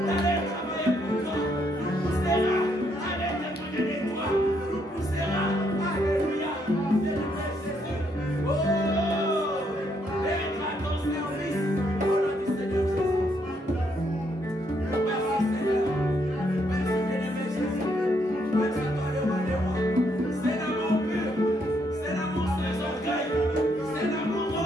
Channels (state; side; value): normal; both; correlation 0.73